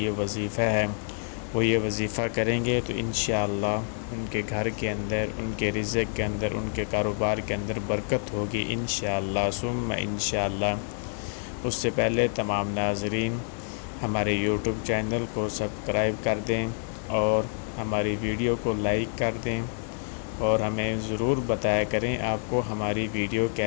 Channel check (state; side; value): silent; right; 60 dB below the other